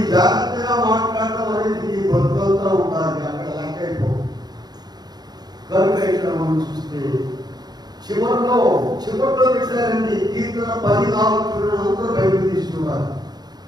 జాగ్రత్తగా మాట్లాడటం అనేది ఈ బతుకంతా ఉండాలి, అక్కడ లెక్క అయిపోవు. కనుక ఇక్కడ మనం చూస్తే చివరిలో పెట్టారండి కీర్తన 14 అందరూ బయటకు తీసుకున్నారు.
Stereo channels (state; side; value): late; left; 0.20 ms